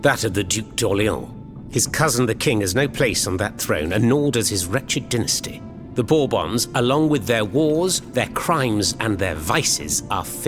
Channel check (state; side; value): identical; both; correlation 1.00